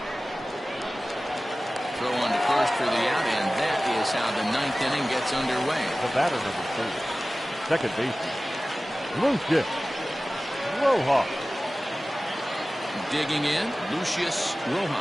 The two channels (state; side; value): normal; both; correlation 0.97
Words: Throw on to first for the out, and that is how the 9th inning gets underway. The batter, number 3, second baseman, Lucius Rojas. Digging in, Lucius